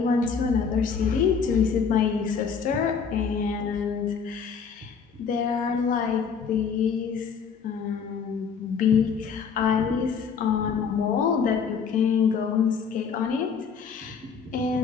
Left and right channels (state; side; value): quieter; right; 6.2 dB